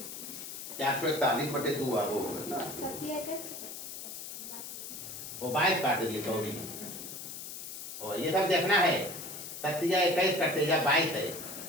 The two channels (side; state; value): left; noise; hiss, 9 dB below the sound